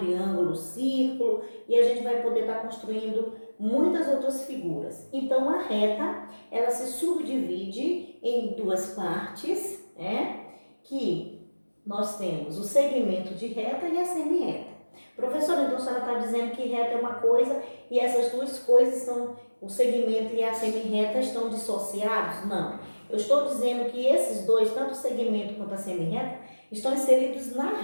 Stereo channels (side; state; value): both; inverted; correlation -1.00